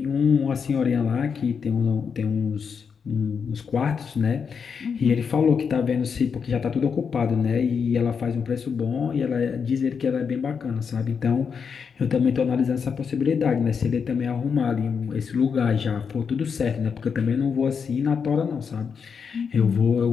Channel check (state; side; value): quieter; right; 6.3 dB